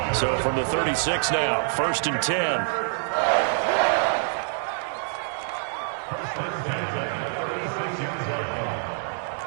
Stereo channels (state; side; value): silent; left; digital silence